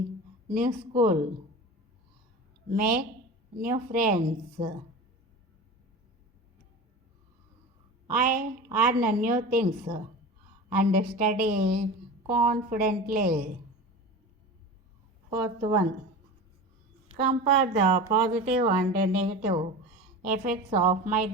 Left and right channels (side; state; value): both; normal; correlation 0.31